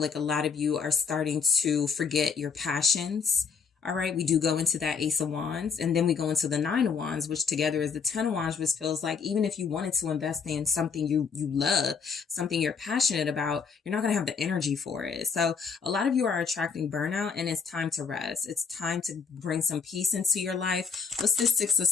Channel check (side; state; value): right; quieter; 5.9 dB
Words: like a lot of you are starting to forget your passions. All right. We do go into that Ace of Wands, and then we go into the Nine of Wands, which together is the Ten of Wands, which feels like even if you wanted to invest in something you love, something you're passionate about, you're not going to have the energy for it. So a lot of you are attracting burnout, and it's time to rest. It's time to bring some peace into your life. What's this Six of